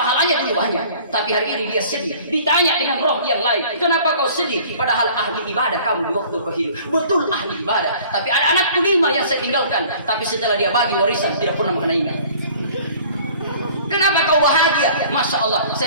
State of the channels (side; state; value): both; inverted; correlation -0.50